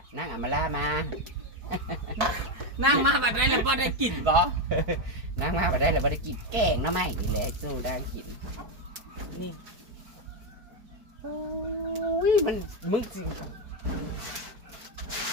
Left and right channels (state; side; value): late; left; 4.7 ms